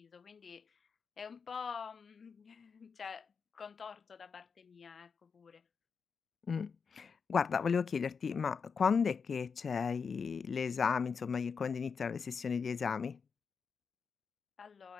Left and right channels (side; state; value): right; quieter; 5.7 dB